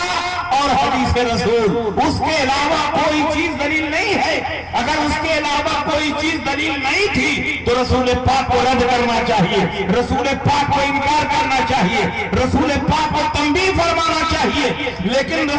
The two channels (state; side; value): identical; both; correlation 1.00